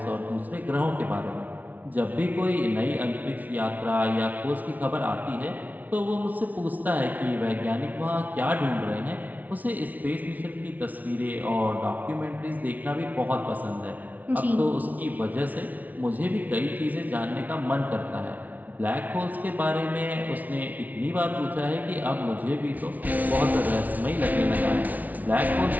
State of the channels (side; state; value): left; late; 0.076 ms